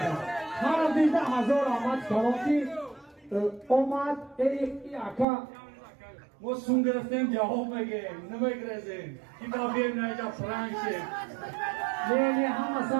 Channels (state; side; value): drops out; left; at 5.2 s